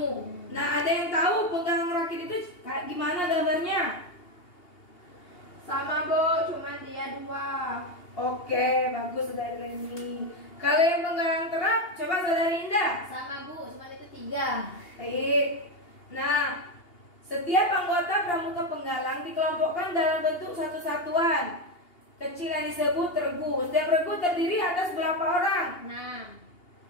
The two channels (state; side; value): late; right; 2.8 ms